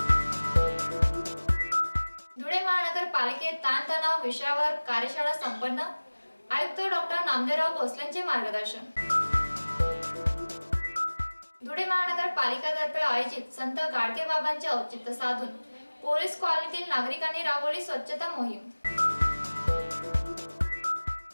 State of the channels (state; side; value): inverted; both; correlation -1.00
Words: धुळे महानगरपालिकेत ताणतणाव विषयावर कार्यशाळा संपन्न। आयुक्त डॉक्टर नामदेवराव भोसलेंचे मार्गदर्शन। धुळे महानगरपालिकेतर्फे आयोजित संत गाडगे बाबांचे औचित्य साधून पोलीस कॉलनीतील नागरिकांनी राबवली स्वच्छता मोहीम।